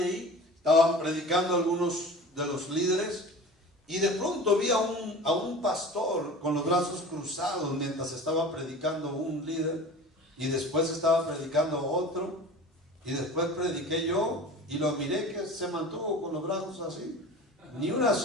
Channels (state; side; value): normal; both; correlation 0.37